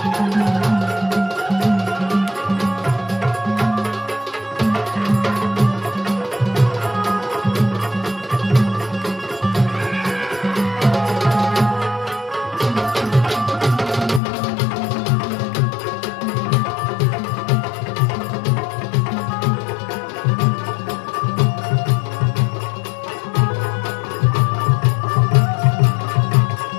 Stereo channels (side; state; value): right; drops out; at 14.2 s